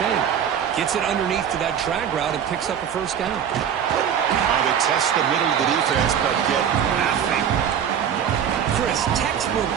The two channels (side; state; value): left; quieter; 8.6 dB